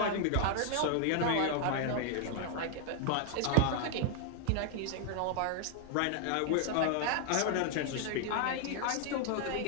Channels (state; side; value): different; both; correlation 0.00